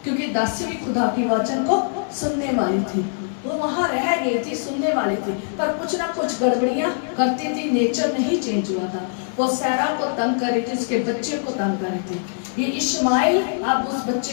क्योंकि दासी भी खुदा की वचन को सुनने वाली थी। वो वहां रह गई थी, सुनने वाली थी, पर कुछ ना कुछ गड़बड़ियां करती थी। नेचर नहीं चेंज हुआ था। वो सारा को तंग कर रही थी, उसके बच्चे को तंग कर रही थी। ये इश्माइल अब उस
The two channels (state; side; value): silent; right; digital silence